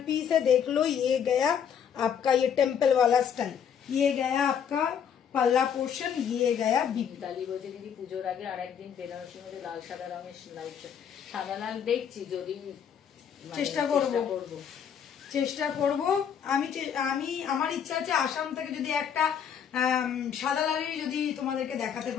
piece है। देख लो, ये गया आपका ये टेम्पल वाला स्टाइल, ये गया आपका পাল্লা পোর্শন, ये गया বিপি। মিতালি বলছে দিদি পুজোর আগে আরেকদিন বেনারসির মধ্যে লাল সাদা রঙের লাইট, সাদা লাল দেখছি, যদি চেষ্টা করব। আমি আমার ইচ্ছা আছে আসাম থেকে যদি একটা সাদা লালের যদি তোমাদেরকে দেখাতে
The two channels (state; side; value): quieter; right; 8.0 dB